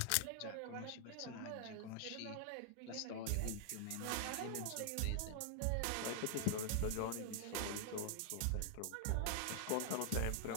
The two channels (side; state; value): both; different; correlation 0.00